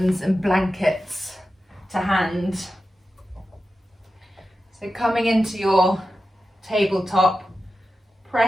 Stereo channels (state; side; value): normal; both; correlation 0.92